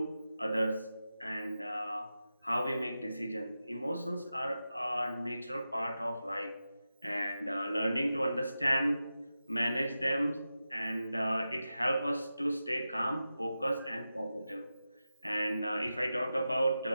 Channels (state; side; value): inverted; both; correlation -0.92